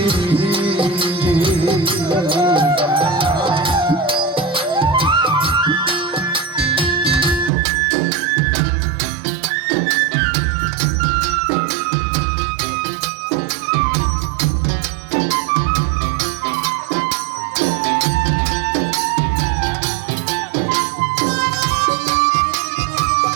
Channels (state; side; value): drops out; left; at 7.5 s